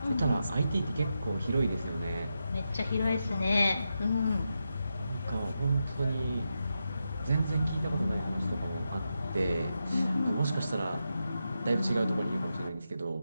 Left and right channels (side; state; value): both; inverted; correlation -0.87